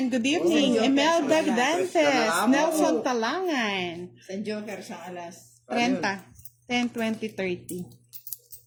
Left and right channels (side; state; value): both; identical; correlation 1.00